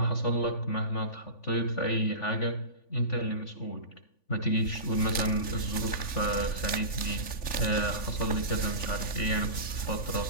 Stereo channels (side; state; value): right; late; 3.5 ms